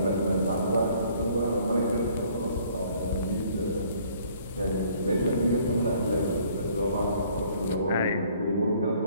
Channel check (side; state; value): both; inverted; correlation -0.59